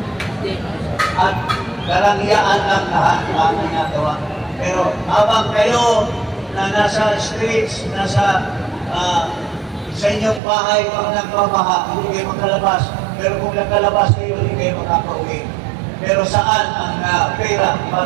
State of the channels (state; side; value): drops out; left; at 10.4 s